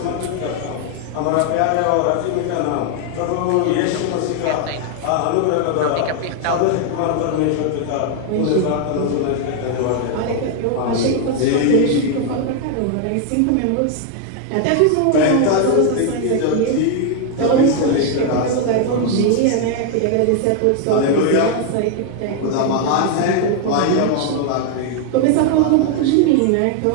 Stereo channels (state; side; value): different; both; correlation 0.00